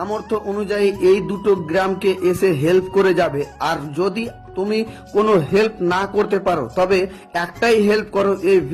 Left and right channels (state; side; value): identical; both; correlation 1.00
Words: অনুযায়ী এই দুটো গ্রামকে এসে হেল্প করে যাবে। আর যদি তুমি কোনো হেল্প না করতে পারো তবে একটাই হেল্প করো, এই